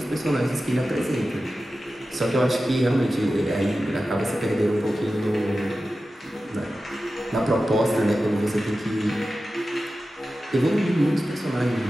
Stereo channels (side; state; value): both; normal; correlation 0.94